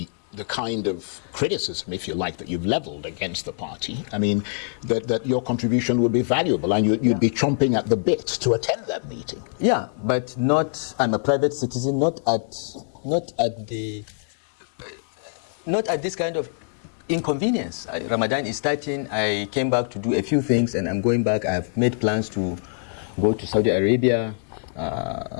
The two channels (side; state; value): right; silent; 62 dB below the other